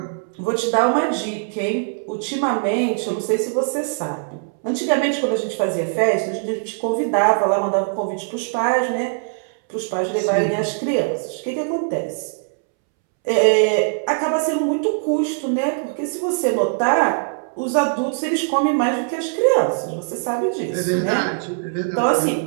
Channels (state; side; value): silent; left; 65 dB below the other